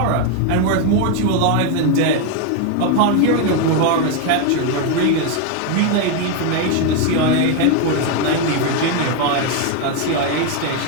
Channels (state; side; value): different; both; correlation 0.01